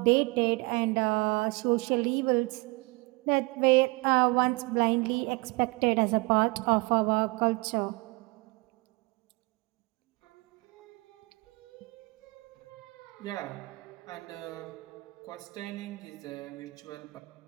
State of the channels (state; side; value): quieter; left; 26.2 dB